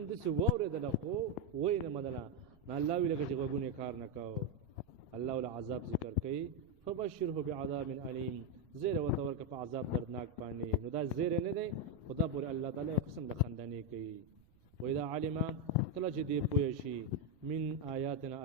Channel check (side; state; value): right; noise; rumble, 29 dB below the sound